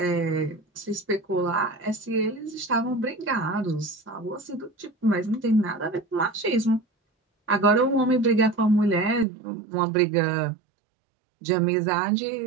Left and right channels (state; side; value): drops out; left; at 9.2 s